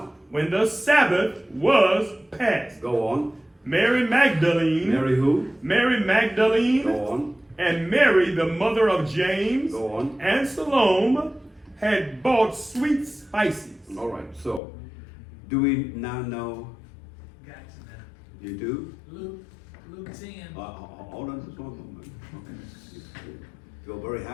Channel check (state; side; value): drops out; right; at 14.6 s